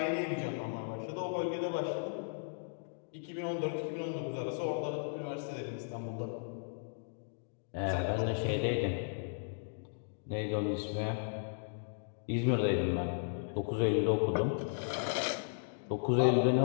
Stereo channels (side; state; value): right; silent; digital silence